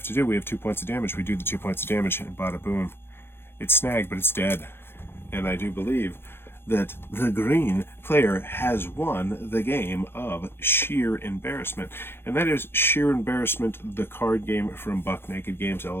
to do, we have 2 points of damage. We do the 2 points of damage, and bada boom, it's snagged, but it's dead. And I do believe that the green player has won the game of Shear Embarrassment. And that is Shear Embarrassment, the card game from Buck Naked Games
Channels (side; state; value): right; late; 0.11 ms